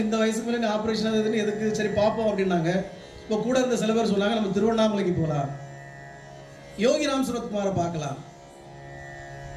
இந்த வயசுக்கு மேலே ஆப்ரேஷன் எதுன்னு, எதுக்கு, சரி பார்ப்போம் அப்படின்னாங்க. இப்போ கூட இருந்த சில பேர் சொன்னாங்க நம்ம திருவண்ணாமலைக்கு போகலாம், யோகிராம் சுரத்குமாரை பார்க்கலாம்.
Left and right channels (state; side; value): identical; both; correlation 1.00